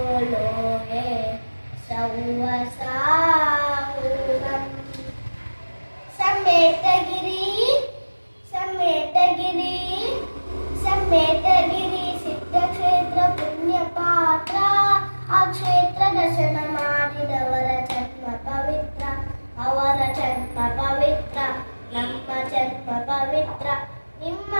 ಲೋಹೆ ಸೌವಸಾಹುನಂ. ಸಮೇತಗಿರಿ ಸಮೇತಗಿರಿ ಸಮೇತಗಿರಿ ಸಿದ್ಧಕ್ಷೇತ್ರ ಪುಣ್ಯ ಪಾತ್ರ. ಆ ಕ್ಷೇತ್ರ ದರ್ಶನ ಮಾಡಿದವರ ಜನ್ಮ ಪವಿತ್ರ, ಅವರ ಜನ್ಮ ಪವಿತ್ರ, ನಮ್ಮ ಜನ್ಮ ಪವಿತ್ರ, ನಿಮ್ಮ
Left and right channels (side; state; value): both; inverted; correlation -1.00